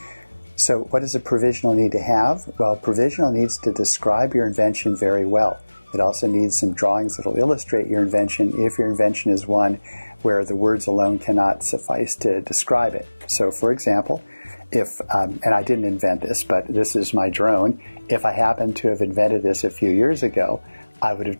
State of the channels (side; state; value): both; inverted; correlation -1.00